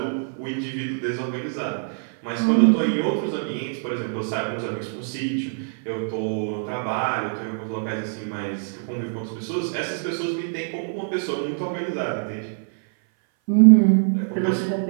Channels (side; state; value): left; silent; 58 dB below the other